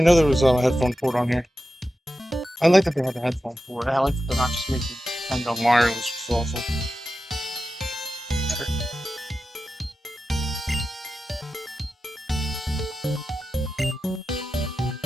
know there was a headphone port on here. I like that they had a headphone port. I like that they're not just making And the wireless was awesome.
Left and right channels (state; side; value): normal; both; correlation 0.92